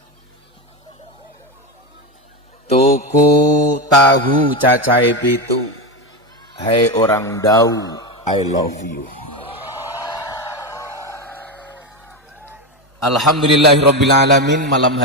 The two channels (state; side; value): normal; both; correlation 0.15